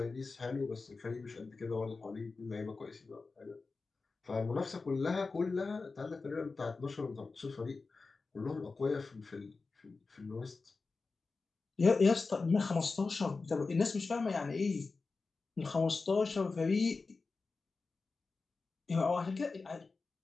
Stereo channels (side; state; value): right; quieter; 4.1 dB